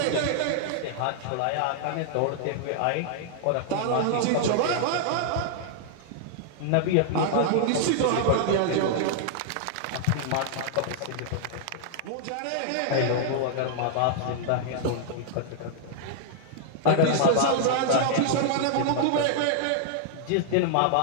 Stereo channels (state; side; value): different; both; correlation -0.01